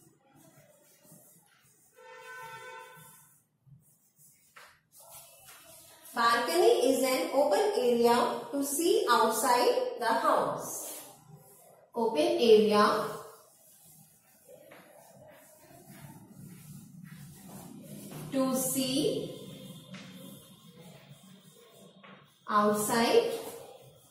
Balcony is an open area to see outside the house. Open area to see outside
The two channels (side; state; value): both; identical; correlation 1.00